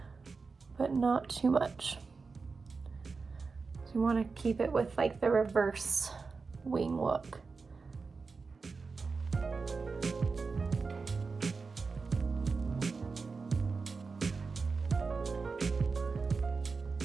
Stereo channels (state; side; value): quieter; left; 4.5 dB